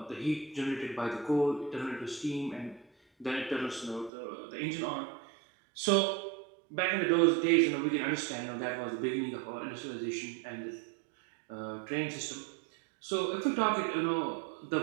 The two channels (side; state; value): left; drops out; at 4.1 s